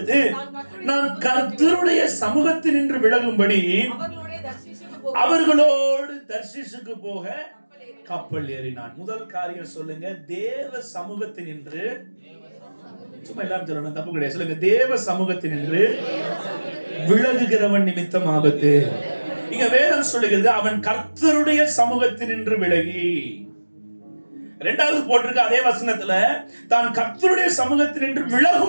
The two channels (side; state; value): both; inverted; correlation -1.00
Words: நான் கர்த்தருடைய சமூகத்தினின்று விலகும்படி அவர்களோடு தர்சீசுக்கு போக கப்பல் ஏறினான். முதல் காரியம் சொல்லுங்க, தேவ சமூகத்தினின்று. சும்மா எல்லாரும் சொல்லணும், தப்பு கிடையாது. சொல்லுங்க, தேவ சமூகத்தினின்று விலகுகிறவன் நிமித்தம் ஆபத்து. இங்க வேதம் சொல்லுகிறது, அவன் கர்த்தருடைய சமூகத்தினின்று விலகி. 2வது போட்டிருக்க அதே வசனத்துல, தான் கர்த்தருடைய சமூகத்தினின்று